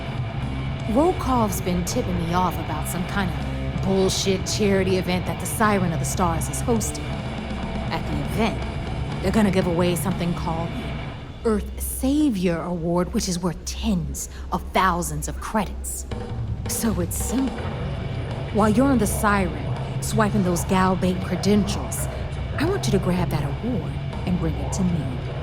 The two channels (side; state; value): both; identical; correlation 1.00